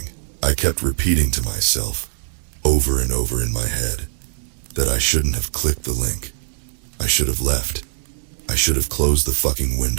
I kept repeating to myself, over and over in my head, that I shouldn't have clicked the link. I should have left. I should have closed the fucking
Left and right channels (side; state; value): left; silent; 65 dB below the other